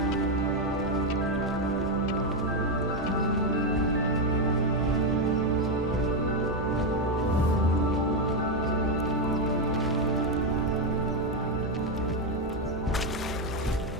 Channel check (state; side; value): normal; both; correlation 0.05